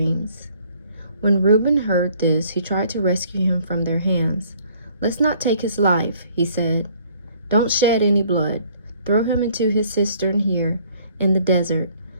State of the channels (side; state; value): both; inverted; correlation -0.60